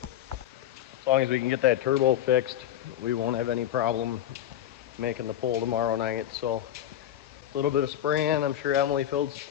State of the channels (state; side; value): quieter; right; 11.5 dB